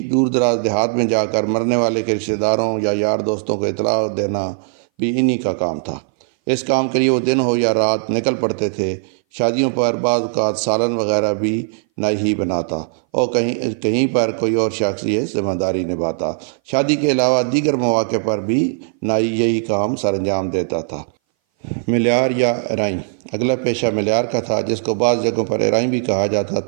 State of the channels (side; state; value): left; silent; 60 dB below the other